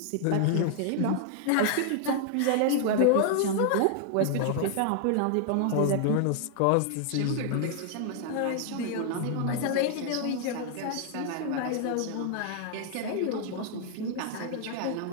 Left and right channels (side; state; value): both; different; correlation 0.00